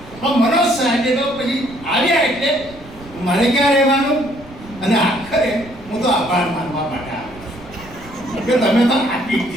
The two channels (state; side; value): noise; right; rumble, 20 dB below the sound